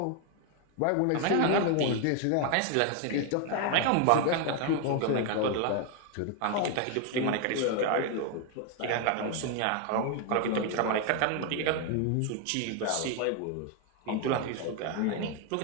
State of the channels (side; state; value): both; different; correlation 0.01